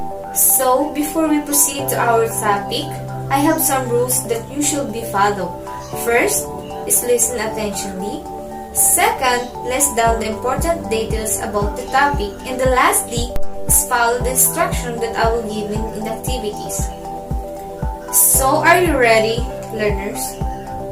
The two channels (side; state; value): both; identical; correlation 1.00